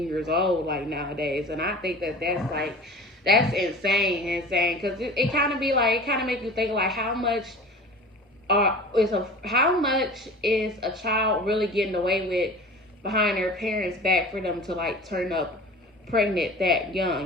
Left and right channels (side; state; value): both; normal; correlation 0.39